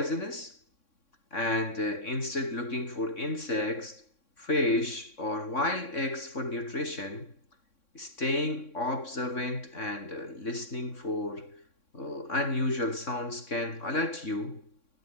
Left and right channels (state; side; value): late; right; 3.6 ms